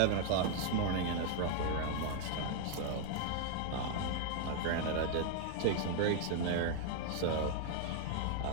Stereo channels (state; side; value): different; both; correlation 0.00